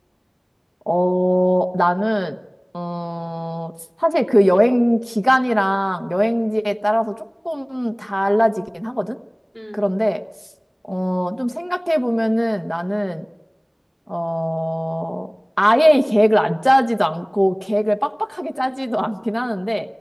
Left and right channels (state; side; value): identical; both; correlation 1.00